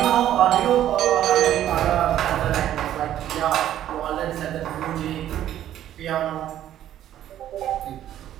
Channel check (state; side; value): quieter; left; 11.7 dB